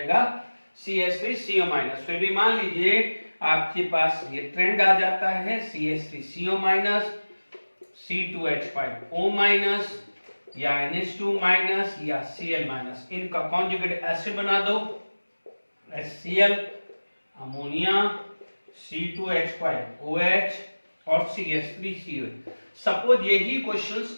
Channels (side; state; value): both; inverted; correlation -1.00